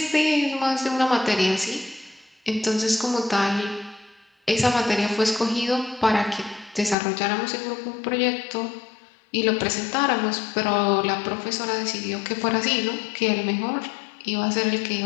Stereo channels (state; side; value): drops out; right; at 7.0 s